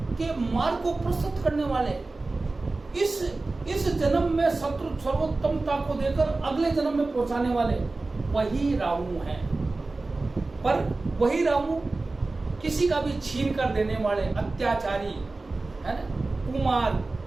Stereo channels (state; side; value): quieter; left; 3.3 dB